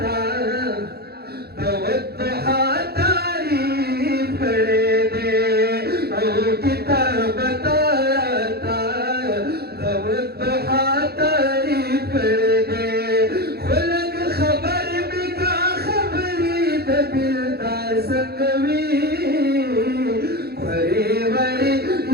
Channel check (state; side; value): late; left; 0.46 ms